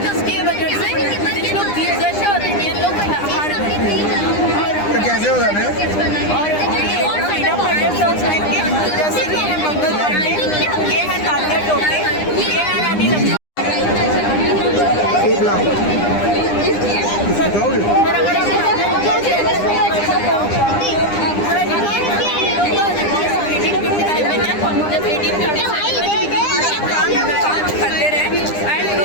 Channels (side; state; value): right; late; 9.9 ms